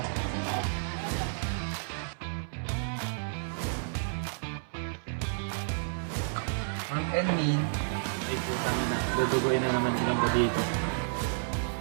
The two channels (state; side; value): silent; left; 57 dB below the other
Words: Ang Enmin. Ay, putang na. Dudugoy na naman ilang ko dito.